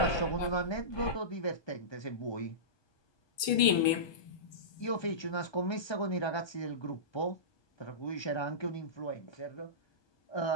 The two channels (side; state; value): right; late; 1.2 ms